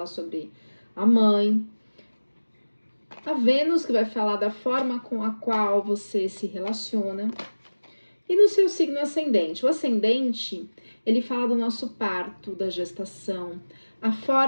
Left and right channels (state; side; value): inverted; both; correlation -1.00